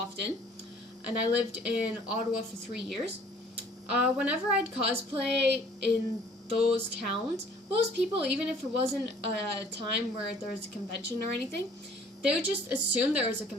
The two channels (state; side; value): normal; both; correlation 0.55